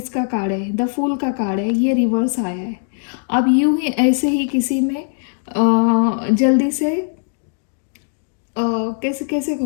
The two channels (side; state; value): right; silent; digital silence